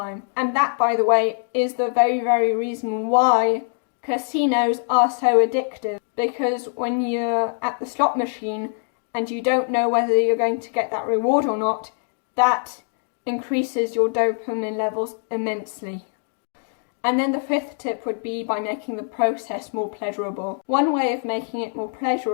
And that, by the way, is the very, very reason why casinos are so addictive, because when you're at the slot machine and you don't know whether you're going to get that reward or not, that increases your dopamine levels immensely. And then the fifth tip would be by making the process more pleasurable. One way of making it more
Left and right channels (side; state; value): right; silent; 60 dB below the other